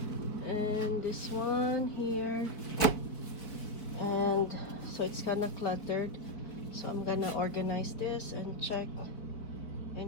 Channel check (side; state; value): right; late; 4.6 ms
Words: and this one here, and so it's kind of cluttered. So I'm gonna organize this and check